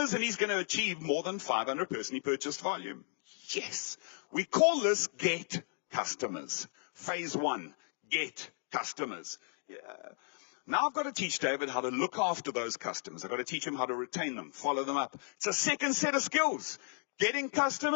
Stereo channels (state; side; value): silent; right; 55 dB below the other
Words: and he's going to achieve more than 500 personally purchased volume. Yes. We call this get customers. Phase 1, get customers. Yeah. Now I've got to teach David how to look after those customers. I've got to teach him how to retain them, follow them up. It's a second set of skills. Getting